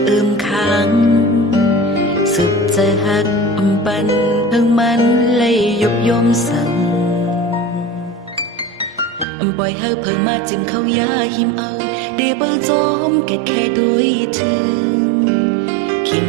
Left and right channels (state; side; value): drops out; left; at 9.2 s